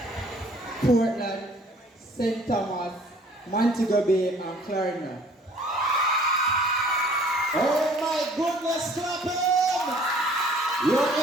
Portland, St. Thomas, Montego Bay, and Clarendon. oh my goodness, clap him! You're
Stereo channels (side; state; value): both; normal; correlation 0.55